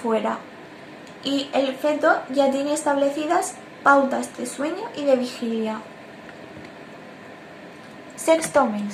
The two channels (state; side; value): identical; both; correlation 1.00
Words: y el feto ya tiene establecidas pautas de sueño y de vigilia. Sexto